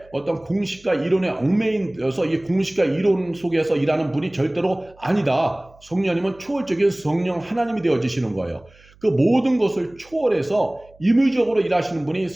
어떤 공식과 이론에 얽매여서 이 공식과 이론 속에서 일하는 분이 절대로 아니다. 성령님은 초월적인 성령 하나님이 되어지시는 거예요. 그 모든 것을 초월해서 임의적으로 일하시는 분이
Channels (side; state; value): right; noise; hum, 28 dB below the sound